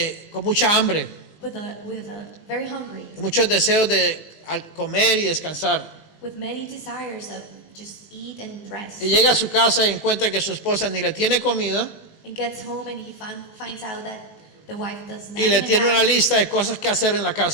con mucha hambre, with a very hungry, muchos deseos de comer y descansar. with many desires of just eat and rest. Y llega a su casa y encuentra que su esposa ni le tiene comida And gets home and he finds out that the wife does not y le even tiene una have lista de cosas que hacer en la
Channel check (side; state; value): right; late; 19 ms